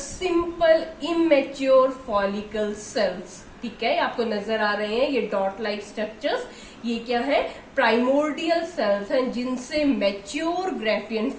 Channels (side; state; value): both; identical; correlation 1.00